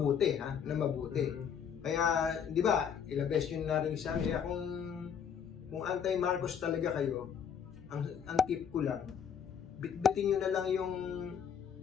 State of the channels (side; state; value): right; quieter; 7.6 dB